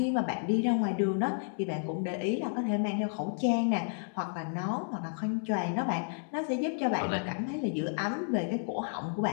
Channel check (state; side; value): silent; right; digital silence